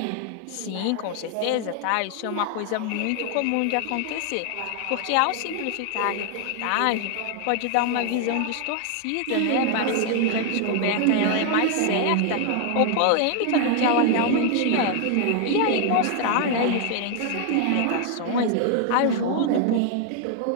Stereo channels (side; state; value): both; different; correlation 0.00